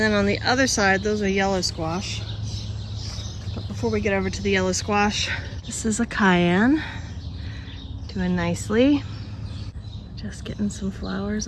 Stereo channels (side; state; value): both; identical; correlation 1.00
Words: on the other side, those are yellow squash. But before we get over to the yellow squash, this is a cayenne. Doing nicely. Just getting some flowers